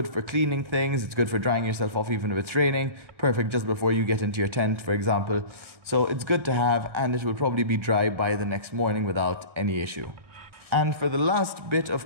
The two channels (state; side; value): late; left; 1.6 ms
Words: for cleaning things. It's good for drying yourself off even if it's raining. Perfect just before you get into your tent, for example. So it's good to have, and it will probably be dry by the next morning without any issue. And for the last bit